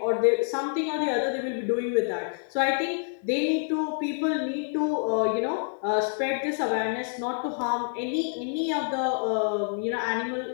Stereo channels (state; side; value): silent; right; 60 dB below the other